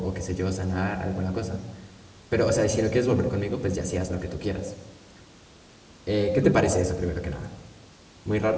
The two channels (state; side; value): identical; both; correlation 1.00